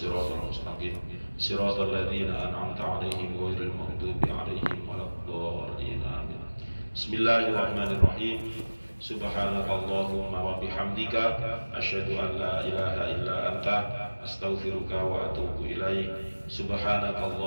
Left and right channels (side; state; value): both; inverted; correlation -1.00